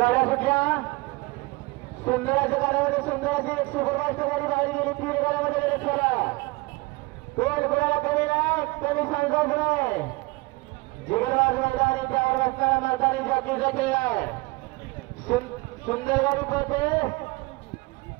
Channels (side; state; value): left; quieter; 23.6 dB